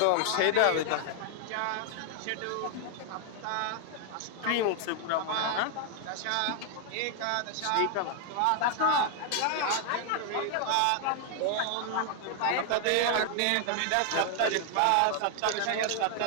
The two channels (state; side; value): different; both; correlation 0.00